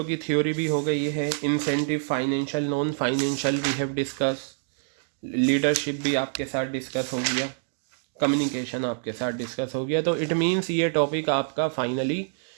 की थ्योरी भी हो गई है, incentive, financial, non financial we have discuss, leadership भी आपके साथ डिस्कस हो गया, कम्युनिकेशन आपके साथ डिस्कस हो गया। तो इट मीन्स ये टॉपिक आपका फाइनली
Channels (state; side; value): silent; left; digital silence